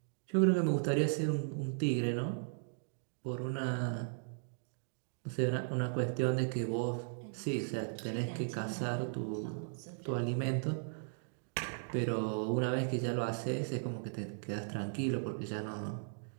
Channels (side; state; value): left; silent; digital silence